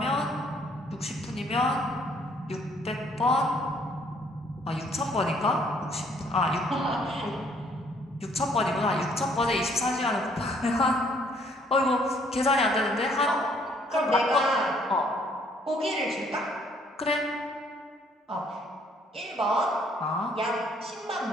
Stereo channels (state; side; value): normal; both; correlation 0.63